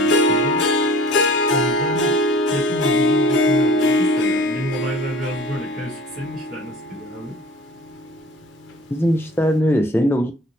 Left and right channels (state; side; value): normal; both; correlation 0.45